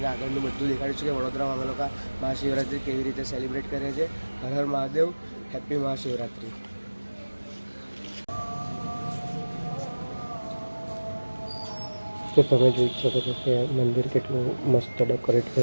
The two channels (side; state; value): both; inverted; correlation -1.00